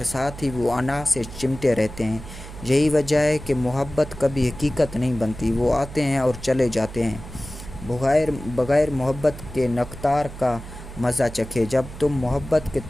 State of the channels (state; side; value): noise; right; hum, 13 dB below the sound